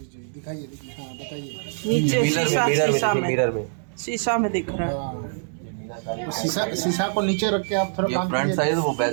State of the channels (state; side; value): silent; left; digital silence